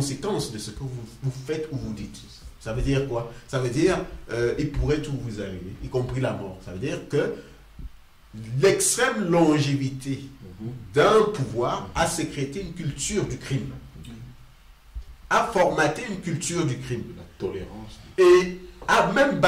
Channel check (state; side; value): identical; both; correlation 1.00